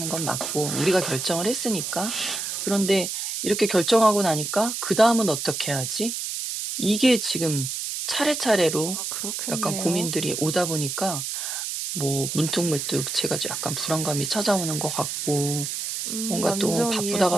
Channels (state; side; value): noise; right; hiss, 4 dB below the sound